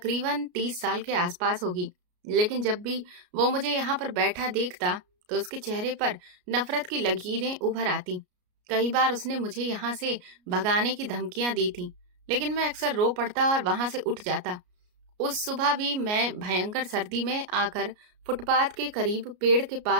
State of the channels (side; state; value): left; late; 33 ms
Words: 30 साल के आसपास होगी, लेकिन जब भी वो मुझे यहाँ पर बैठा देखता तो उसके चेहरे पर नफरत की लकीरें उभर आती। कई बार उसने मुझे यहाँ से भगाने की धमकियां दी थी, लेकिन मैं अक्सर रो पड़ता और वहां से उठ जाता। उस सुबह भी मैं भयंकर सर्दी में आकर फुटपाथ के करीब पेड़ के